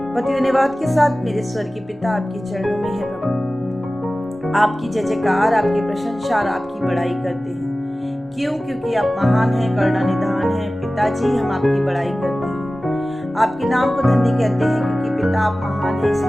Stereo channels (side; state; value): both; normal; correlation 0.96